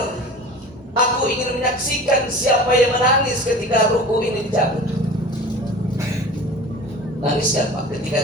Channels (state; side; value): normal; both; correlation 0.39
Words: Aku ingin menyaksikan siapa yang menangis ketika ruhku ini dicabut. Nangis siapa ketika